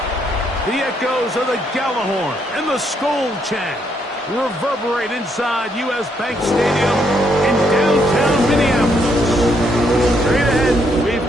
The echoes of the Gallahorn and the Skol chant reverberate inside U.S. Bank Stadium in downtown Minneapolis. Straight ahead, we've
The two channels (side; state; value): both; normal; correlation 0.74